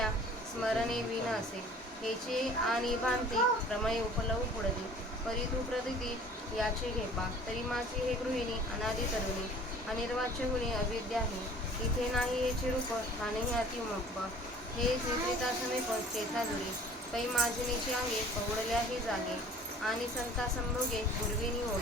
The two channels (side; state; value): both; normal; correlation 0.49